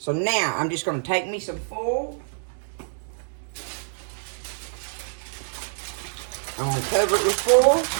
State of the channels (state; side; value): silent; left; digital silence